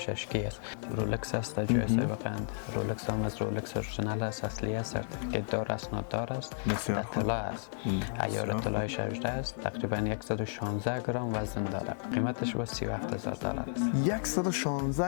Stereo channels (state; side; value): silent; right; digital silence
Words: اشکی است. رولکس است در جوسای بقند. رولکس هم از رولکس اورجینال است، اصلی است، سرتیفیکت دار است، نوتدار است، در طلا است. عیار طلای 18 است، تقریبا 116 گرم وزن داره. قیمتش با $37,000 است.